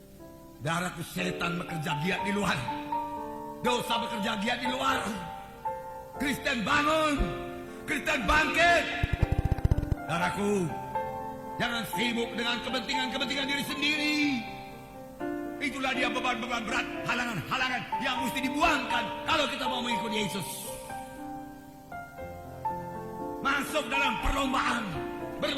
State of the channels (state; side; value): identical; both; correlation 1.00